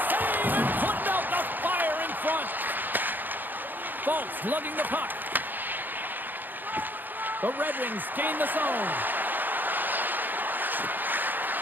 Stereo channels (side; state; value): left; late; 0.089 ms